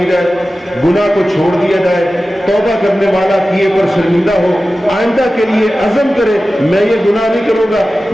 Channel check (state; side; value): normal; both; correlation 0.95